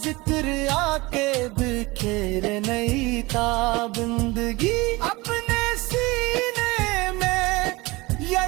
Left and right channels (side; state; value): left; quieter; 22.6 dB